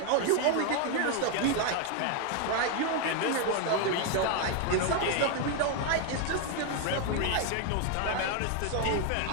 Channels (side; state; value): both; different; correlation 0.01